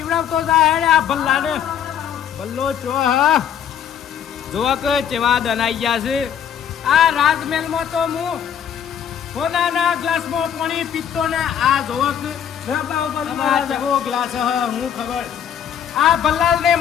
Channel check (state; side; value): quieter; right; 8.9 dB